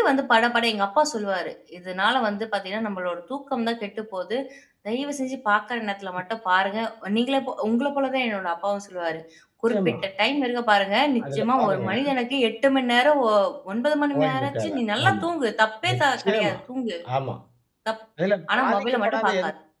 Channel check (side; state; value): both; identical; correlation 1.00